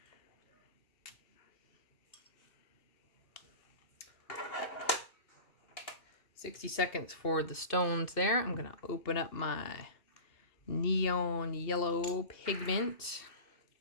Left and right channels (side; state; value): right; late; 2.8 ms